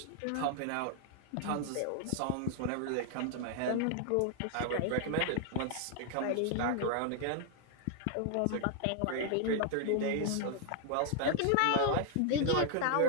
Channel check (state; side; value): different; both; correlation -0.01